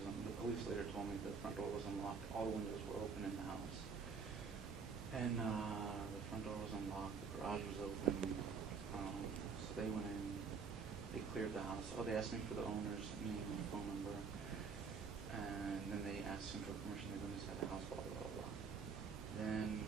the police later told me the front door was unlocked. All the windows were open in the house. And the front door was unlocked, the garage was open. So they went in, they cleared the house. Oh, they asked me for the owner's name and phone number. And then they asked him for permission to go inside the house, blah, blah, blah, blah. Then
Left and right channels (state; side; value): quieter; left; 5.6 dB